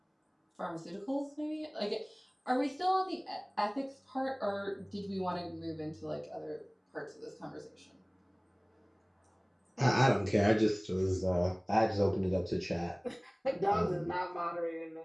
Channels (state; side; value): identical; both; correlation 1.00